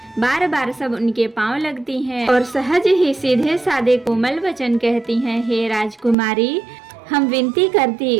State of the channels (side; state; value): left; drops out; at 6.2 s